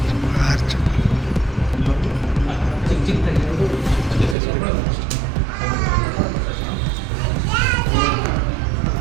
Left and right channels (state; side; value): drops out; left; at 4.4 s